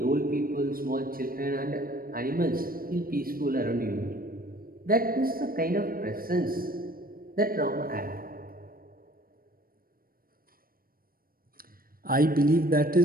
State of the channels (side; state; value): left; late; 0.42 ms